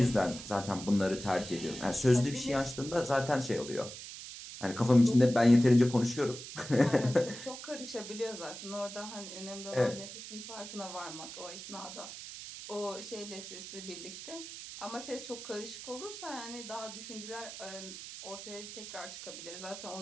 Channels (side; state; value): right; noise; hiss, 11 dB below the sound